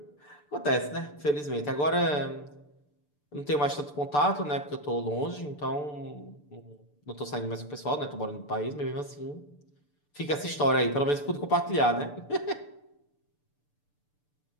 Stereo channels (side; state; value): right; late; 6.8 ms